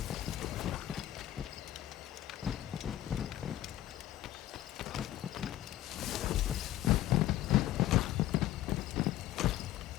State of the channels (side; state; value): right; quieter; 13.9 dB